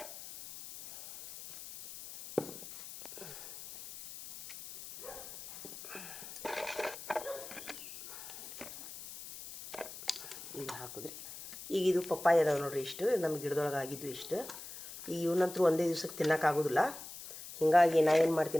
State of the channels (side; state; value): left; noise; hiss, 12 dB below the sound